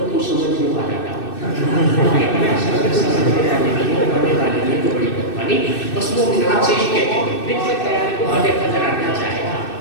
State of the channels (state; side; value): late; right; 2.6 ms